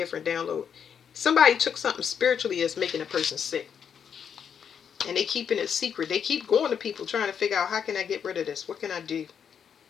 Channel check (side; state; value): right; quieter; 7.6 dB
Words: download. Somebody took something spiritually that's making a person sick. And they keeping it secret. They keep going to people trying to figure out, how can I get rid of this? What can I do?